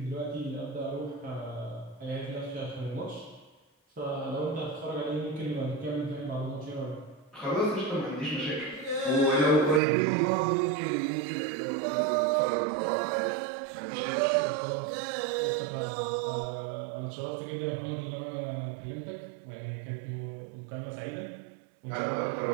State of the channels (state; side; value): drops out; left; at 9.8 s